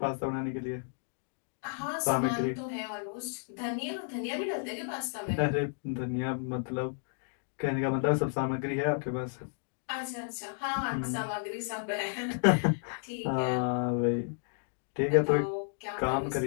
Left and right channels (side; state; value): right; silent; digital silence